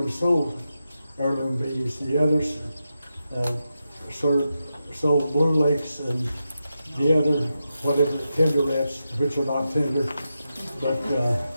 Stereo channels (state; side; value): inverted; both; correlation -0.88